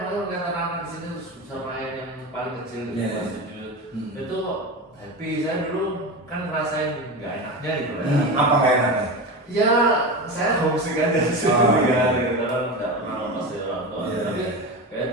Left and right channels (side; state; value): both; normal; correlation 0.24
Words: malah lihat anak-anak di sini bisa main yang paling kecil di Iya. kelas 7. Itu happy, saya dulu kan ngerasain nggak enaknya gitu ya. Apa nggak enaknya? Ya, saya homesick aja sih Oh, ya, iya. gitu kan nggak pernah lepas dari orang tua. Iya, Tapi iya. kayak